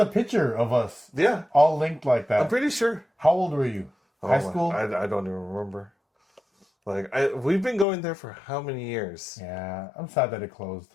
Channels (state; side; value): drops out; right; at 7.9 s